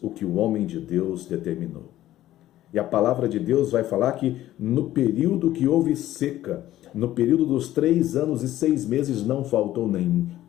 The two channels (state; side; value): quieter; right; 14.0 dB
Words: o que o homem de Deus determinou. E a palavra de Deus vai falar que no período que houve seca, no período dos 3 anos e 6 meses, não faltou nem